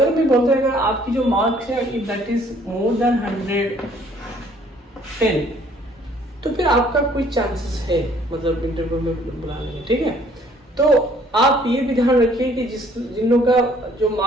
मैं बोलता हूँ अगर आपकी जो मार्क्स है if that is more than 110 तो फिर आपका कोई चांसेस है मतलब इंटरव्यू में बुलाने में। ठीक है, तो आप ये भी ध्यान रखिए कि जिन लोगों का जो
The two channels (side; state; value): both; normal; correlation 0.60